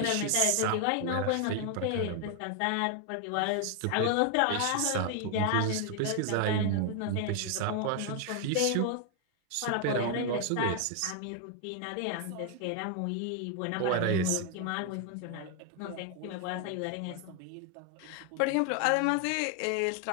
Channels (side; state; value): both; different; correlation 0.00